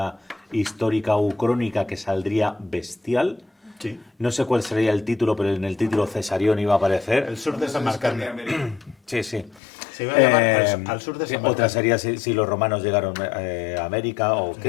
histórica o crónica que saldría bestial. Sí. No sé cuál sería el título, pero en el título Cesarión iba a aparecer. El sur de Samarcanda. América. Sí, sí. Se iba a llamar al sur de San Otra Martín. sería si los romanos llegaron a América o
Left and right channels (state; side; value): drops out; right; at 9.6 s